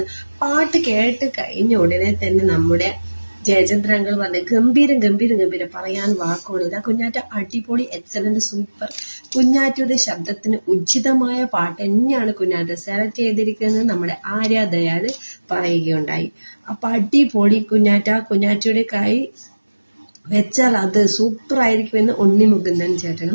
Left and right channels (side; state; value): both; inverted; correlation -1.00